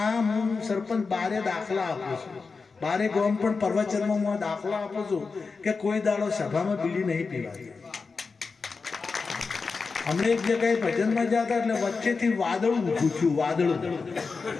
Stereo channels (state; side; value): quieter; right; 4.6 dB